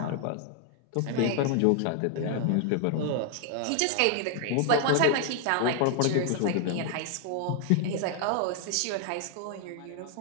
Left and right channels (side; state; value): both; different; correlation 0.00